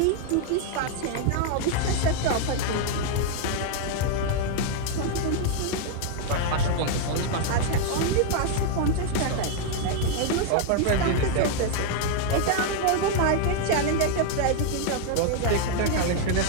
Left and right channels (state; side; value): different; both; correlation 0.00